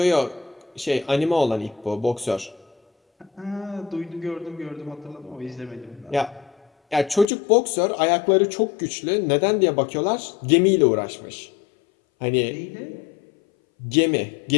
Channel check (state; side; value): drops out; right; at 7.2 s